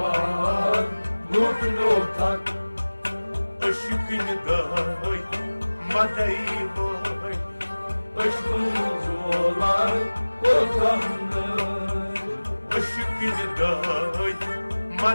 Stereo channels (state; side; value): inverted; both; correlation -1.00